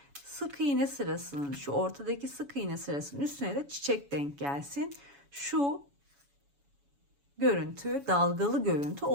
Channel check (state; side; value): late; left; 7.1 ms